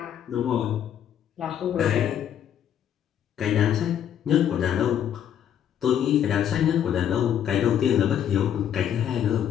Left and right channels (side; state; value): right; quieter; 9.6 dB